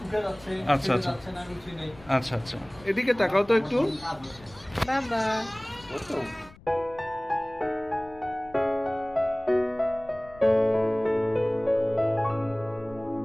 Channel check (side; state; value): left; noise; rumble, 23 dB below the sound